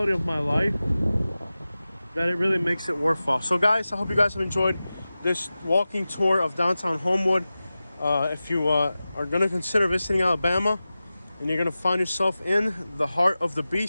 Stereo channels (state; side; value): inverted; both; correlation -0.95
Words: of my life that it really makes it worthwhile. So guys, I hope you guys have enjoyed this walking tour of downtown Homewood. If you are going to consider visiting Alabama and you're going to find yourself in the heart of the